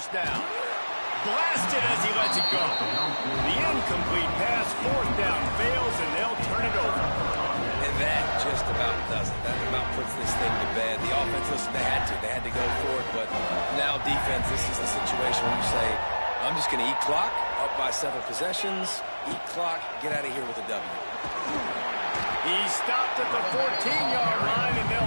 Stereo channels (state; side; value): inverted; both; correlation -1.00